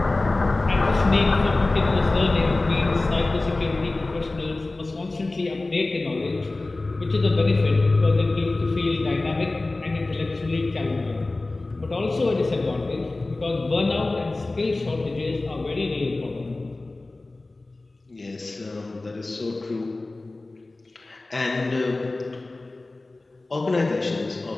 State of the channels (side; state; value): right; quieter; 3.1 dB